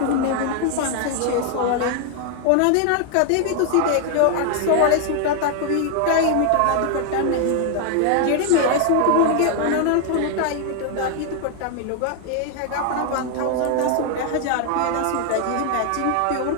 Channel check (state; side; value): different; both; correlation 0.00